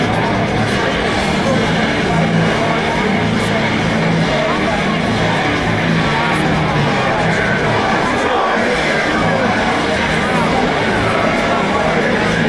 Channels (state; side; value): identical; both; correlation 1.00